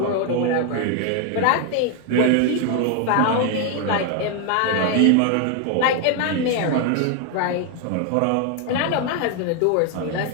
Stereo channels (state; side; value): different; both; correlation 0.01